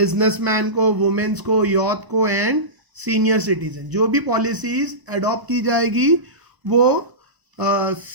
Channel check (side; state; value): left; late; 1.0 ms